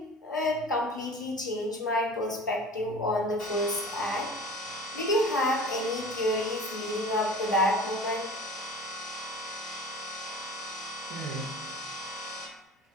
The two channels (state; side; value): normal; both; correlation 0.40